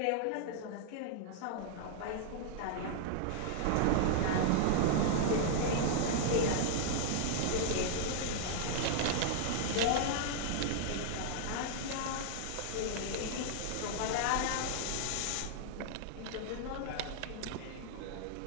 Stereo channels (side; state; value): both; different; correlation -0.01